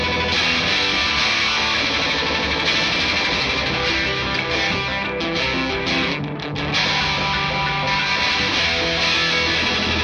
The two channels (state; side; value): identical; both; correlation 1.00